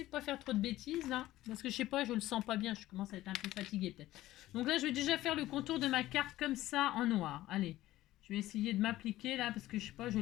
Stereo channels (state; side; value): quieter; right; 15.6 dB